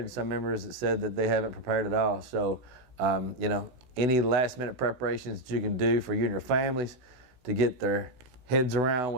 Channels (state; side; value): late; left; 16 ms